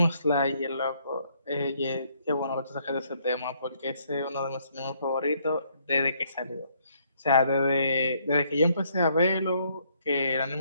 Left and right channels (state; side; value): inverted; both; correlation -0.69